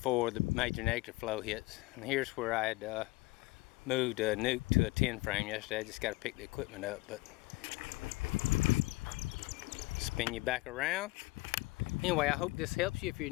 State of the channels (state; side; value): quieter; right; 22.3 dB